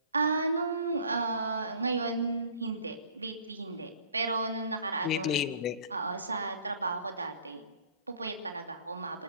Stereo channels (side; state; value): both; inverted; correlation -0.52